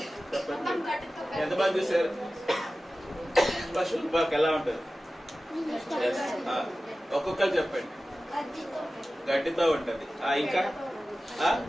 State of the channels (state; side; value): normal; both; correlation 0.96